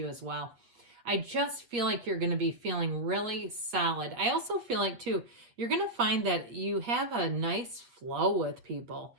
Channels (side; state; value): left; late; 8.1 ms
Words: as well. I just feel like you're going to be feeling really solid. I also feel like, too, you're going to find that you have a nice flow with people